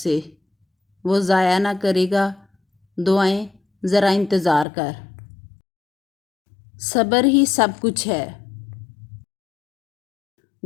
وہ ضائع نہ کرے گا دعائیں، ذرا انتظار کر۔ صبر ہی سب کچھ ہے۔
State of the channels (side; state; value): right; drops out; at 4.7 s